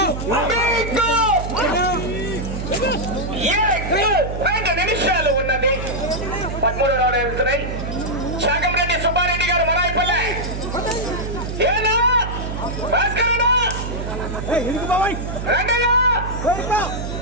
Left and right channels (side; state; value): right; noise; hum, 6 dB below the sound